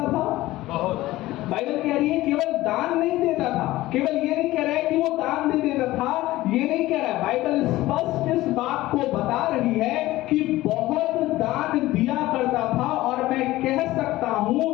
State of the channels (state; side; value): quieter; right; 17.1 dB